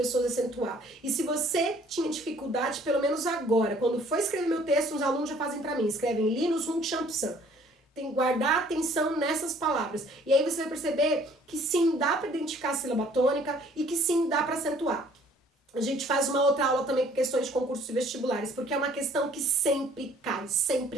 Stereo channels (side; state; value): both; normal; correlation 0.58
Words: acentuar. E se você tinha dificuldade, pelo menos agora, quando for escrever meu texto, os alunos já fazem pra mim, escrevem linus, rum, chão, psan. Tem que guardar atenção nessas palavras. E aí você vai perceber que sim, dá pra identificar a sílaba tônica e que sim, dá pra acentuar. A gente faz uma outra aula também com questões de concursos vestibulares, porque é uma questão que sempre cai, sempre,